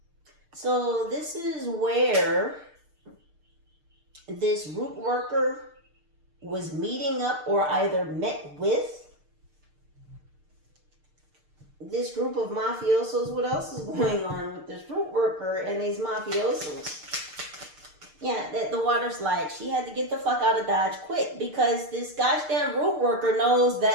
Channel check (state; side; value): late; left; 6.6 ms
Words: So this is where this root worker was meeting up or either met with this group of mafiosos. What else is going on with this root worker and these mafiosos? Yeah, the water slide. She had to get the fuck out of Dodge quick because this goddamn root worker knows